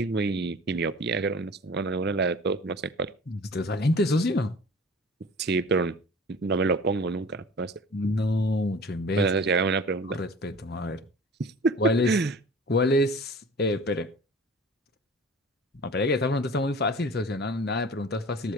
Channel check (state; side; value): normal; both; correlation 0.42